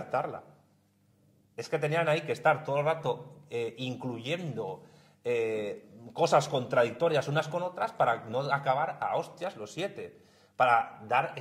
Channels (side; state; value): both; identical; correlation 1.00